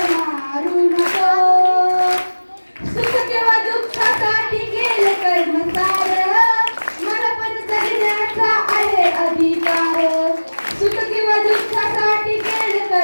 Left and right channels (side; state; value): both; inverted; correlation -1.00